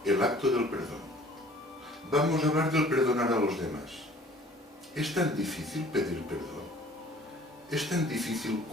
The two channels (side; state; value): both; normal; correlation 0.52